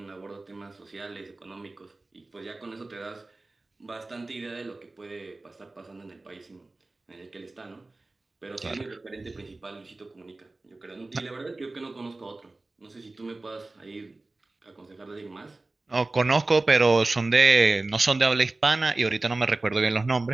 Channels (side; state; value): left; quieter; 3.1 dB